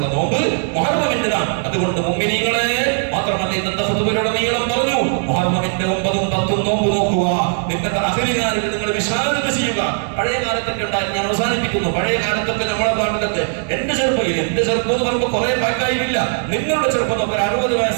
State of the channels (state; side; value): silent; left; 63 dB below the other